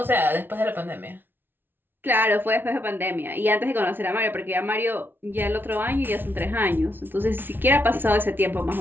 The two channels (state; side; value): late; left; 0.099 ms